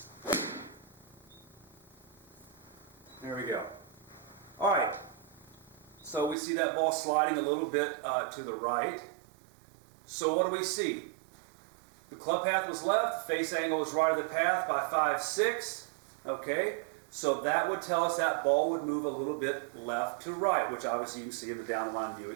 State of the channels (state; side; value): drops out; left; at 6.4 s